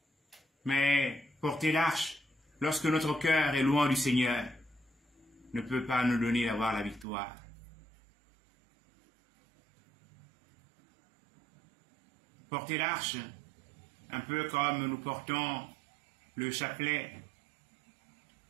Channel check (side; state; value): left; drops out; at 7.1 s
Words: Mais porter l'arche, lorsque notre cœur est loin du Seigneur, ne peut pas nous donner d'avoir la victoire. Porter l'arche, un peu comme nous portons le chapelet,